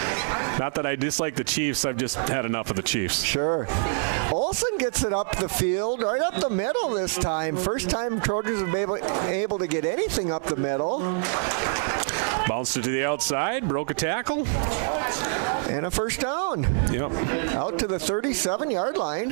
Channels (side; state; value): left; silent; 61 dB below the other